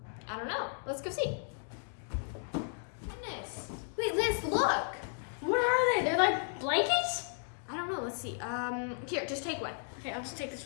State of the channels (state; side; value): silent; right; 55 dB below the other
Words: don't know. Let's go see. Goodness. Wait, Lance, look. What are they? They're like blankets? I don't know. Let's see. Here, just take one. Okay, I'll just take